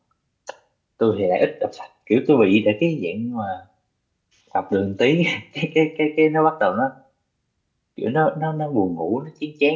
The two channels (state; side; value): identical; both; correlation 1.00